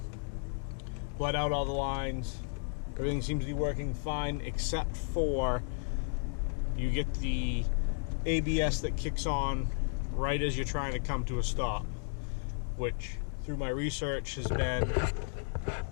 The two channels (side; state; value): right; silent; 55 dB below the other